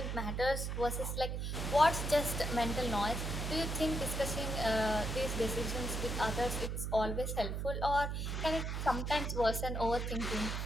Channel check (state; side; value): noise; right; hum, 2 dB below the sound